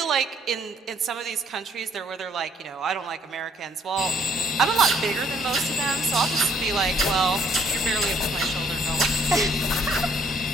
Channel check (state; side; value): normal; both; correlation 0.65